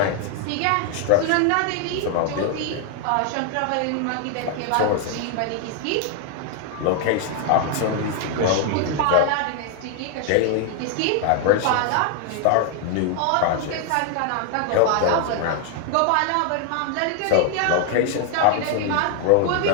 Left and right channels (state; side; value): different; both; correlation 0.00